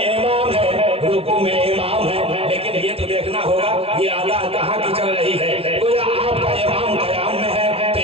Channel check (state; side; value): late; left; 0.28 ms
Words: امام ہے، رکوع میں امام ہے، لیکن یہ تو دیکھنا ہوگا یہ ادا کہاں کی چل رہی ہے۔ گویا آپ کا امام قیام میں ہے تو